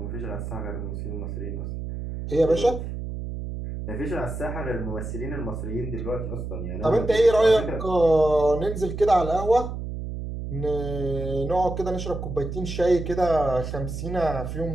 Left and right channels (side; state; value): right; noise; hum, 6 dB below the sound